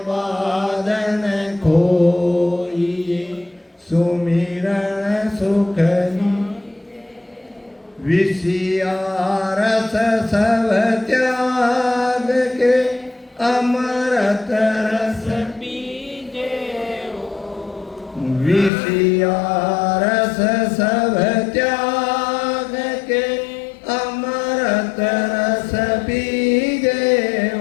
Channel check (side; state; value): right; drops out; at 18.7 s